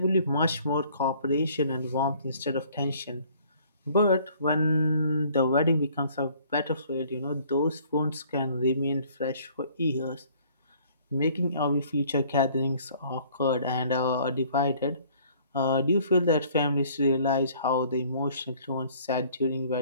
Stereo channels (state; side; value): inverted; both; correlation -0.57